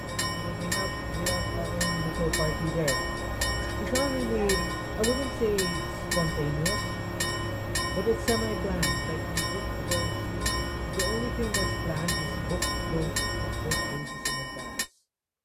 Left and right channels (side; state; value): both; identical; correlation 1.00